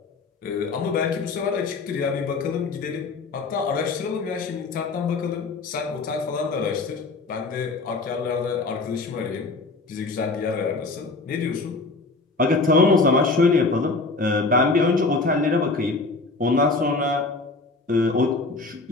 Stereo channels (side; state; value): right; quieter; 3.7 dB